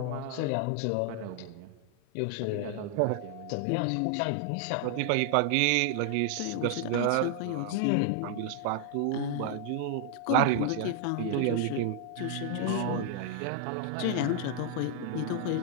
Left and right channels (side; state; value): both; different; correlation 0.00